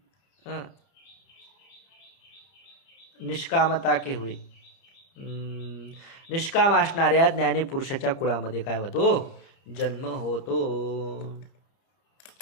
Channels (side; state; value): right; late; 30 ms